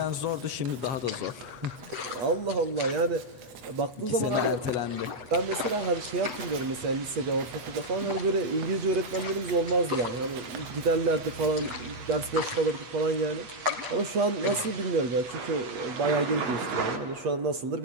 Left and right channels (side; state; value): left; late; 8.2 ms